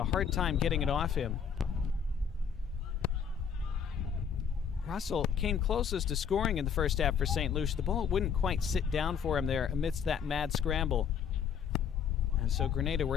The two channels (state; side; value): quieter; right; 7.4 dB